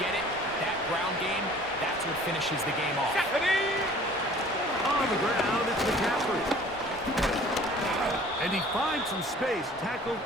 it, that ground game, that's what finishes the game off. On the ground, it's McCaffrey. And he finds some space, tackled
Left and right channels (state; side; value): normal; both; correlation 0.50